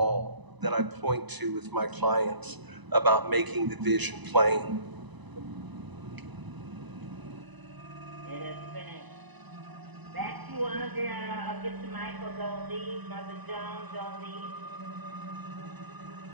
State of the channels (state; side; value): late; left; 1.0 ms